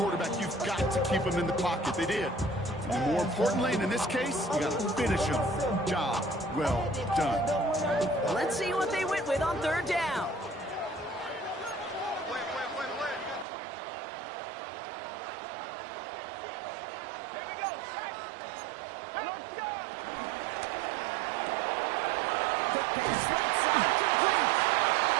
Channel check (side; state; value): left; drops out; at 13.5 s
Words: you've got to keep him in the pocket. They did. And more importantly, and in this case, you got to finish him. Job well done. Let's see what they went with on 3rd down. Quick pass right side, complete.